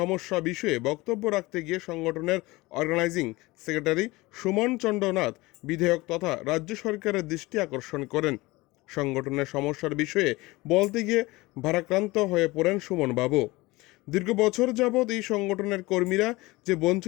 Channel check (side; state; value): right; quieter; 21.4 dB